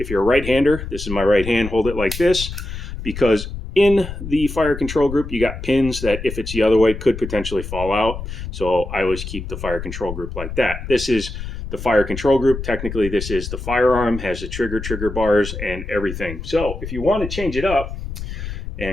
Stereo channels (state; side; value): noise; left; rumble, 8 dB below the sound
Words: you're a right-hander, this is my right hand, hold it like this, because in the fire control group, you got pins that if it's the other way could potentially fall out. So I always keep the fire control group like that. This is the fire control group. Technically, this is the firearm, has the trigger bars and everything. So if you want to change it up